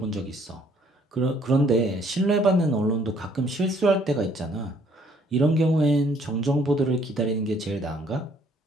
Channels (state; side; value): normal; both; correlation 0.63